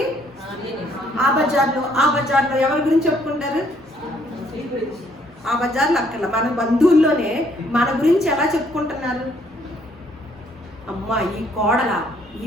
ఆ బజార్లో ఎవరి గురించి చెప్పుకుంటారు? ఆ బజార్లో అక్కడ మన బంధువుల్లోనే మన గురించి ఎలా చెప్పుకుంటున్నారు? అమ్మా, ఈ కోడల,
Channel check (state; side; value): normal; both; correlation 0.66